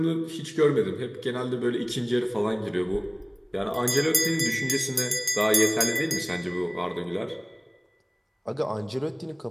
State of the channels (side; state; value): both; identical; correlation 1.00